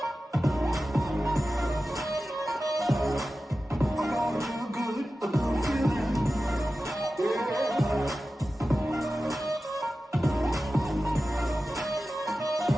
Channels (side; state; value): both; normal; correlation 0.94